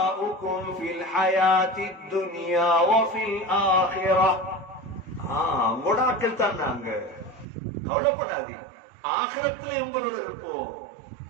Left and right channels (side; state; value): left; drops out; at 7.5 s